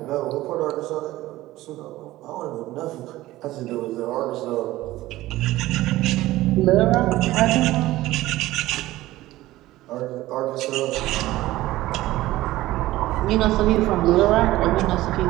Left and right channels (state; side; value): quieter; left; 16.7 dB